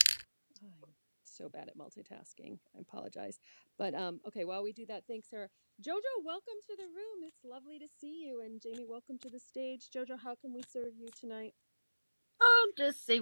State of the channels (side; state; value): both; inverted; correlation -1.00